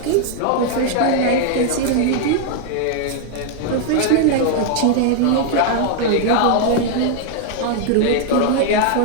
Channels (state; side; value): different; both; correlation 0.00